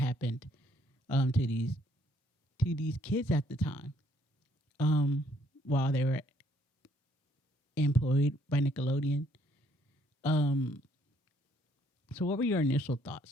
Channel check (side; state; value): both; normal; correlation 0.66